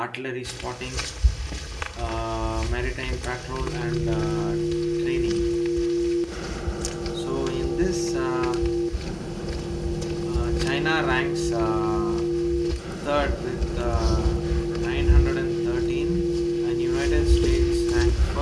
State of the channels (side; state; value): both; identical; correlation 1.00